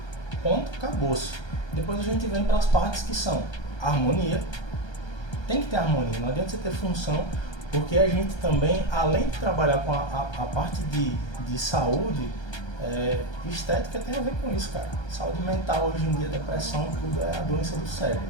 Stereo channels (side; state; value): right; late; 1.3 ms